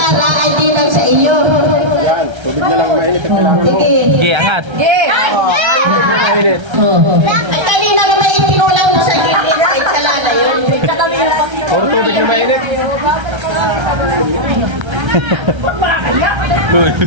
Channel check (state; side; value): late; left; 1.3 ms